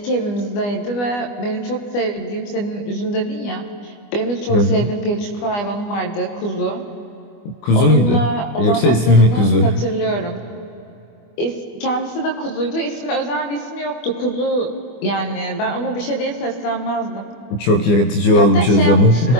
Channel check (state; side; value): late; right; 25 ms